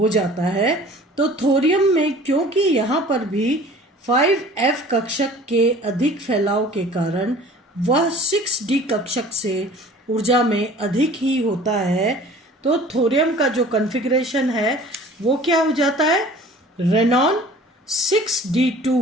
जाता है। तो थोरियम में क्योंकि यहाँ पर भी 5F कक्षक के अधिक फैलाव के कारण वह 6d कक्षक से ऊर्जा में अधिक ही होता है, तो थोरियम का जो कॉन्फ़िगरेशन है वो क्या हो जाता है, रेनॉन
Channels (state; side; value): normal; both; correlation 0.47